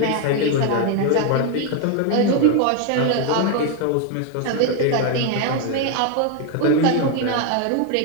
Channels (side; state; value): both; different; correlation 0.01